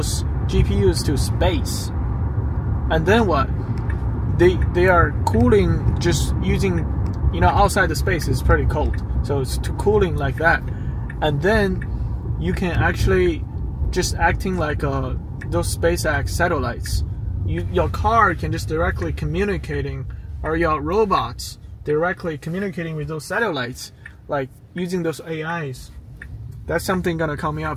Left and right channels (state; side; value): identical; both; correlation 1.00